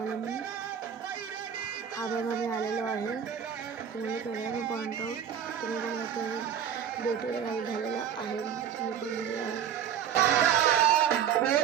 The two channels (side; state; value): left; quieter; 8.7 dB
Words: मी. हा बघा मी आलेलो आहे, तुम्हाला केला मी पॉईंट आउट. तुम्ही बघा ते ड्युटी झालेला आहे, मी पण गेलेलो आहे.